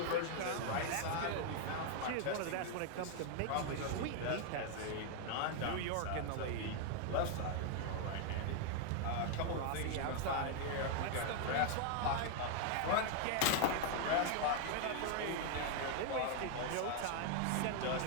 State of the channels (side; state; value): both; different; correlation 0.00